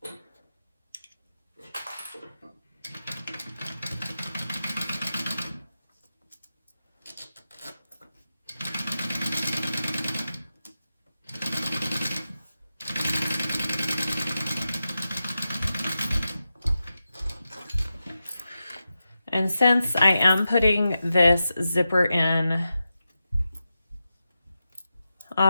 And since I am putting this zipper in,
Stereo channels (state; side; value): inverted; both; correlation -0.91